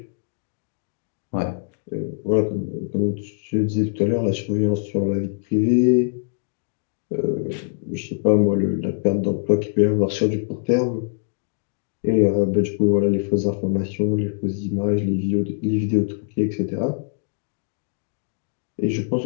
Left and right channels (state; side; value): silent; right; digital silence